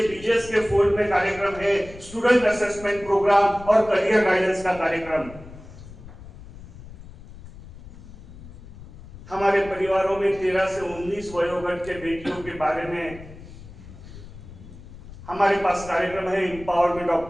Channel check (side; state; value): left; noise; rumble, 17 dB below the sound